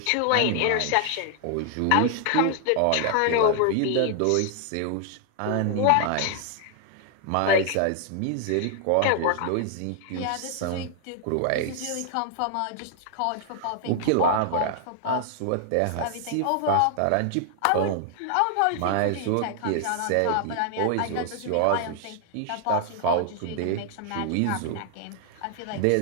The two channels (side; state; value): both; different; correlation 0.00